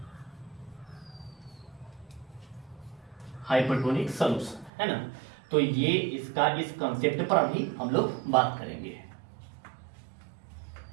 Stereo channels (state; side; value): drops out; left; at 4.7 s